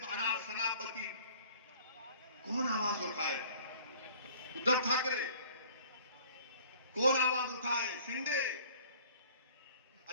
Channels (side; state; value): both; inverted; correlation -0.51